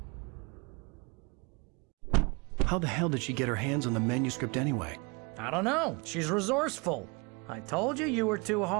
How the hell did she get her hands on the manuscript anyway? I don't know. She's resourceful. I told you you were too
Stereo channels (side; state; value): left; quieter; 29.5 dB